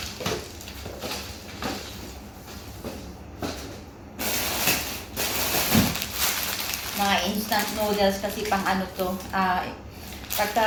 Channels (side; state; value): both; identical; correlation 1.00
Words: Mga instant noodles kasi pang ano to. Pagka